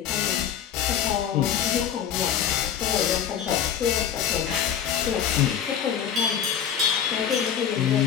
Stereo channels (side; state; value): right; quieter; 8.8 dB